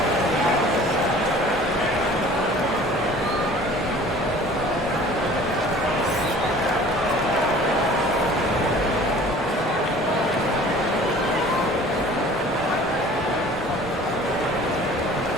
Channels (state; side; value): normal; both; correlation 0.47